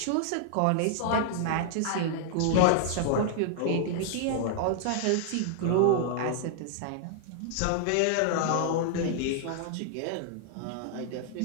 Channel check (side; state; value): both; different; correlation -0.01